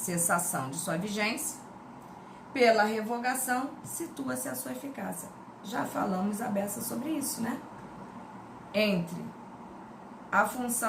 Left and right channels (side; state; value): both; identical; correlation 1.00